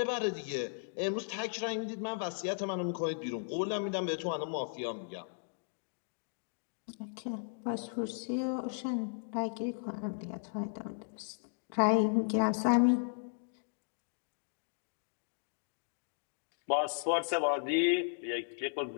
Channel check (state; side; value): silent; right; digital silence